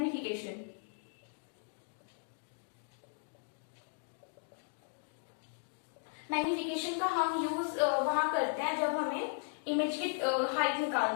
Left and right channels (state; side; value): silent; right; 53 dB below the other